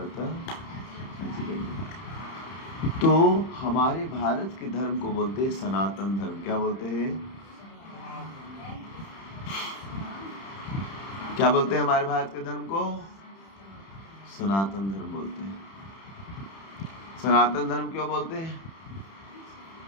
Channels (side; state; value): right; late; 31 ms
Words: तो हमारे भारत के धर्म को बोलते हैं सनातन धर्म। क्या बोलते हैं? क्या बोलते हैं हमारे भारत के धर्म को? सनातन धर्म बोलते हैं। सनातन धर्म क्यों बोलते हैं?